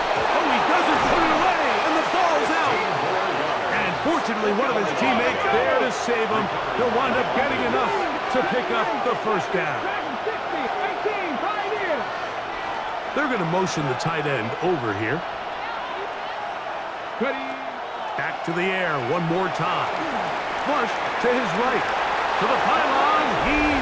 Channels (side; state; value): both; identical; correlation 1.00